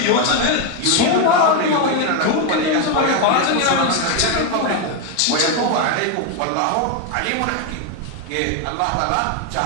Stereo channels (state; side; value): different; both; correlation 0.02